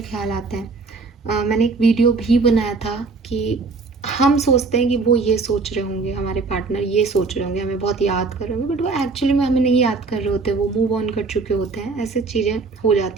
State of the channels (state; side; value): quieter; left; 4.1 dB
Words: ख्याल आते हैं। मैंने एक वीडियो भी बनाया था कि हम सोचते हैं कि वो ये सोच रहे होंगे, हमारे पार्टनर ये सोच रहे होंगे, हमें बहुत याद कर रहे होंगे, बट वो एक्चुअली में हमें नहीं याद कर रहे होते, वो मूव ऑन कर चुके होते हैं। ऐसी चीज़ें हो